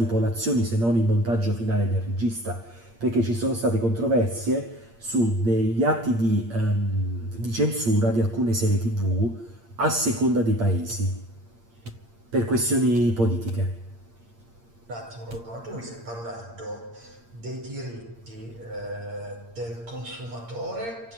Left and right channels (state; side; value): late; left; 8.7 ms